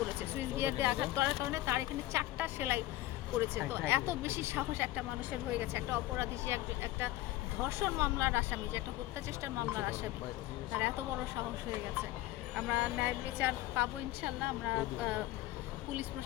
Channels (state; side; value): quieter; right; 16.1 dB